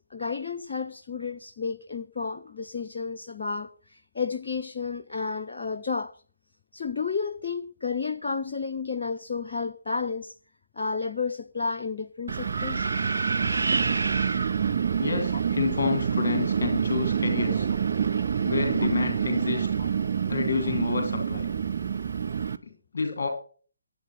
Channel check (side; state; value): both; inverted; correlation -0.72